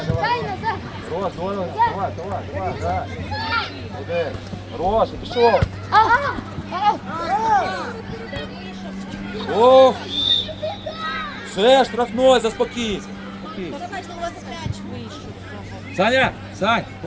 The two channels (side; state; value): both; identical; correlation 1.00